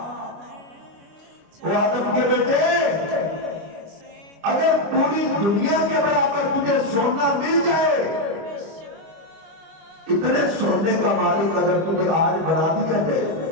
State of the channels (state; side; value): late; left; 25 ms